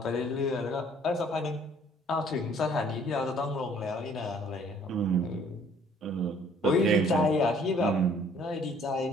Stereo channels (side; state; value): both; normal; correlation 0.59